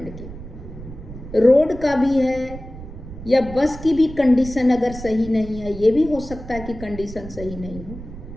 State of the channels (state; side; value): noise; right; rumble, 13 dB below the sound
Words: की। रोड का भी है या बस की भी कंडीशन अगर सही नहीं है, ये भी हो सकता है कि कंडीशन सही नहीं हो।